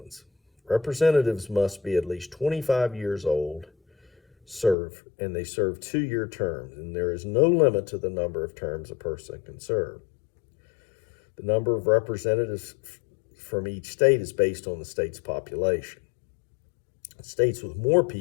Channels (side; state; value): right; drops out; at 4.8 s